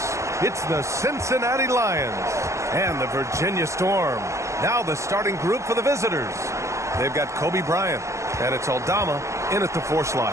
It's the Cincinnati Lions and the Virginia Storm. Now the starting group for the visitors. They've got Kobe Bryant, and it's Aldama in at the 4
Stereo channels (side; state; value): left; late; 0.14 ms